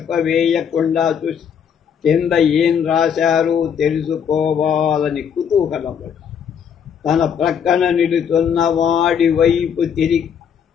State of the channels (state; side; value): quieter; right; 7.7 dB